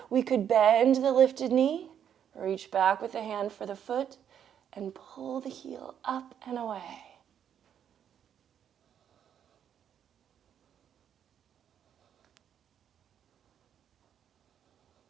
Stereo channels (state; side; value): quieter; left; 9.0 dB